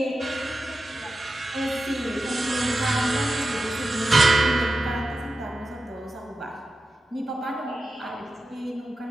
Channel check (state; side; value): normal; both; correlation 0.92